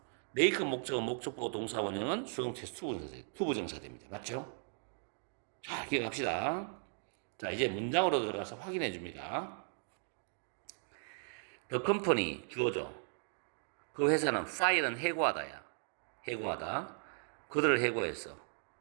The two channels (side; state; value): left; silent; 53 dB below the other